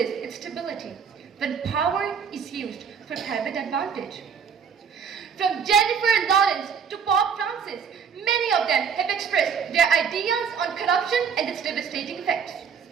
its stability when power is used for private advantage. From Jennifer Lawrence to Pope Francis, many of them have expressed their ideas on corruption and its devastating effects.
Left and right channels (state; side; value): quieter; left; 6.7 dB